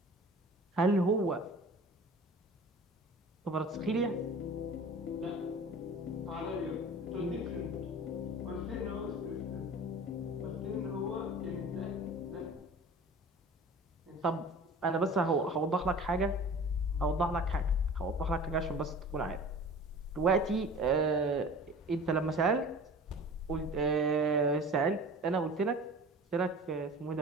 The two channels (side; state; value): both; normal; correlation 0.41